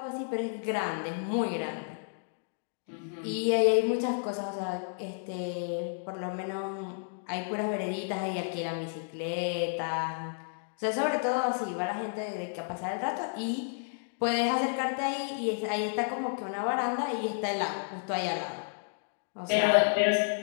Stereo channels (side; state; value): right; silent; digital silence